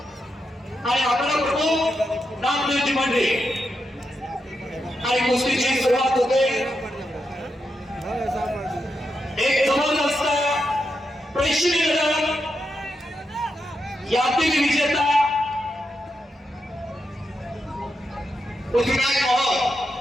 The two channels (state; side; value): normal; both; correlation 0.85